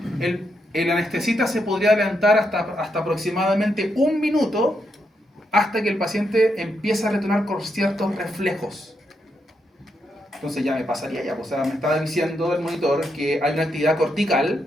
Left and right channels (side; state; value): both; normal; correlation 0.81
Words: el anestesista se podría adelantar hasta aproximadamente 1 minuto hasta que el paciente empieza a retornar con ciertos reflejos. Entonces ya me pasaría ya, o sea, me estaba diciendo el monitor que hay una actividad